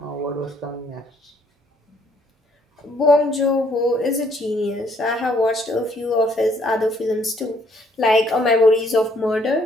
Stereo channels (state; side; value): normal; both; correlation 0.66